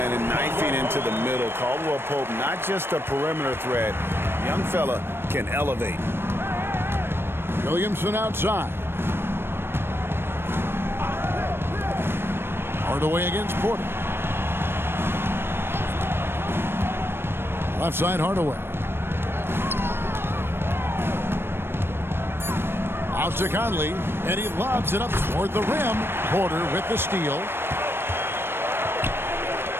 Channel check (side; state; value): left; late; 0.11 ms